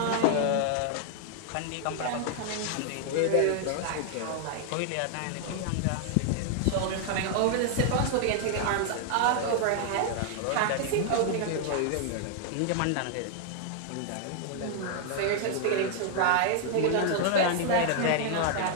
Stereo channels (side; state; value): both; different; correlation 0.00